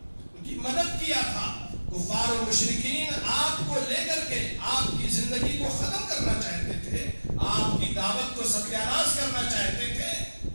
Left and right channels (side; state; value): both; inverted; correlation -1.00